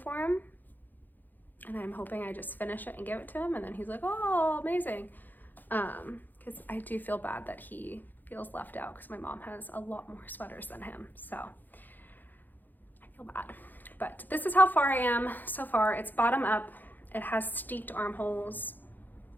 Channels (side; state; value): right; late; 0.087 ms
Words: him, and I'm hoping I just finish it and give it to him, and then he's like, oh, amazing. Because I do feel bad that he feels left out because my mom has a lot more sweaters than him, so I feel bad. But this is how far I am so far. It's bottom up. It has steeped armholes,